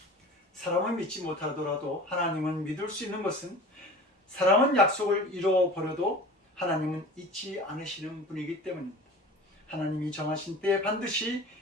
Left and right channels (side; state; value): both; normal; correlation 0.39